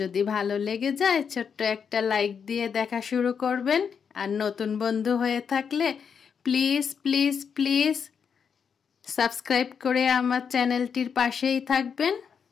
ভালো লেগে যায় ছোট্ট একটা লাইক দিয়ে দেখা শুরু করবেন। আর নতুন বন্ধু হয়ে থাকলে প্লিজ প্লিজ প্লিজ সাবস্ক্রাইব করে আমার চ্যানেলটির পাশেই থাকবেন।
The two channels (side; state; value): right; quieter; 6.7 dB